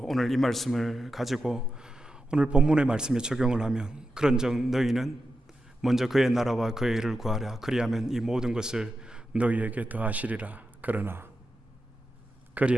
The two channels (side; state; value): both; normal; correlation 0.90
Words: 오늘 이 말씀을 가지고 오늘 본문의 말씀에 적용을 하면 그런즉 너희는 먼저 그의 나라와 그의 의를 구하라. 그리하면 이 모든 것을 너희에게 더하시리라. 그러나 그리